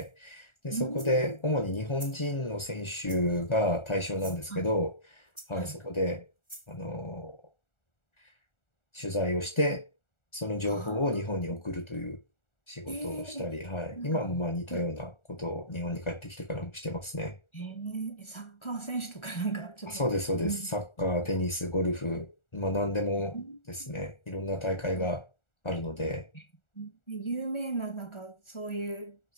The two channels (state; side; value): late; right; 1.4 ms